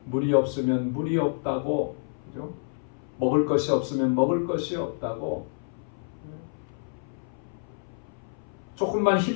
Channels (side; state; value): right; silent; 57 dB below the other